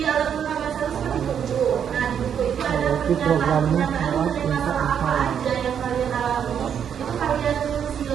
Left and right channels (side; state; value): left; quieter; 8.3 dB